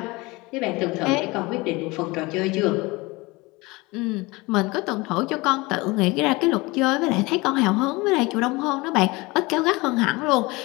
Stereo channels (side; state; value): right; quieter; 23.4 dB